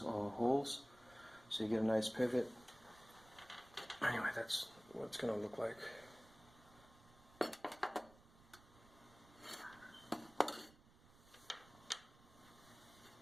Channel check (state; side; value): noise; right; rumble, 23 dB below the sound